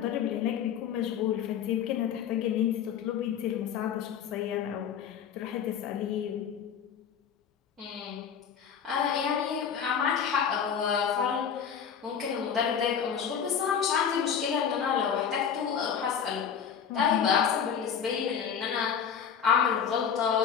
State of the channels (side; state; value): right; quieter; 7.7 dB